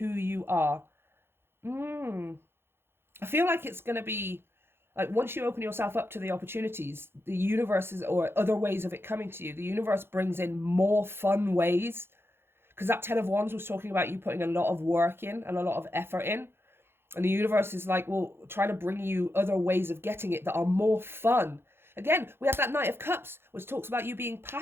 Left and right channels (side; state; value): left; late; 0.11 ms